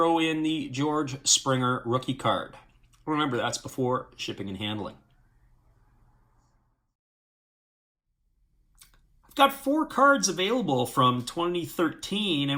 in the George Springer rookie card. Remember, that's before shipping and handling. I've got 4 cards available from 2013,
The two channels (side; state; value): both; identical; correlation 1.00